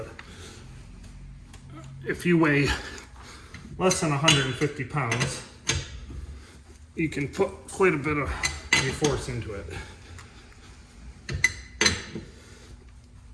if you weigh less than 150 pounds, you can put quite a bit of your force into it.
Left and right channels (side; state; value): both; identical; correlation 1.00